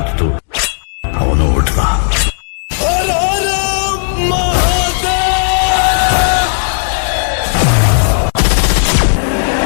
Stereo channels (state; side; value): silent; right; 66 dB below the other